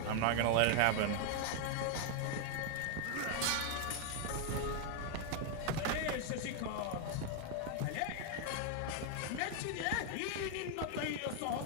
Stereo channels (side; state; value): both; different; correlation 0.00